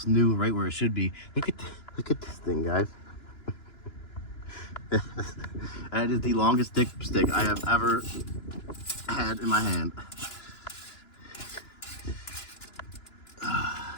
new, right where it should be. Look at this thing, guys. That is the longest dipstick I have ever had in my hand.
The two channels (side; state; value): right; late; 2.9 ms